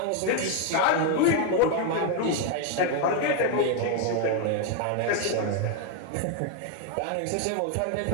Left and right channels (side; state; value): both; different; correlation 0.01